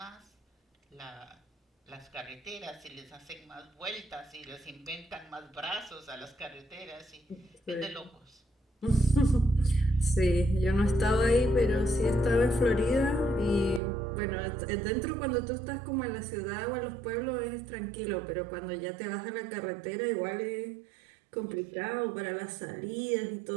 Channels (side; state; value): left; drops out; at 13.8 s